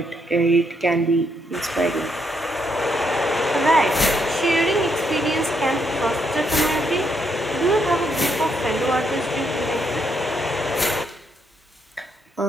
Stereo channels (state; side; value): normal; both; correlation 0.76